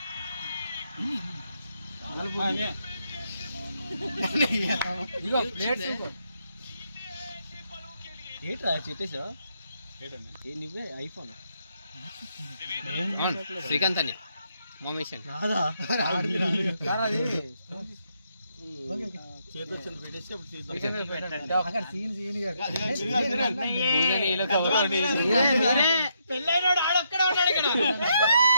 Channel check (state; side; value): inverted; both; correlation -0.77